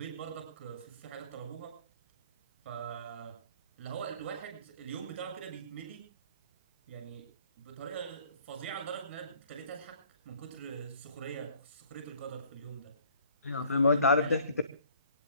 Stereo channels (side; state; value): both; inverted; correlation -0.57